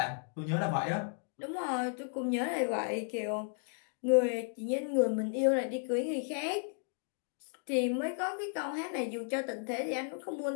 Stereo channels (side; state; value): right; silent; 55 dB below the other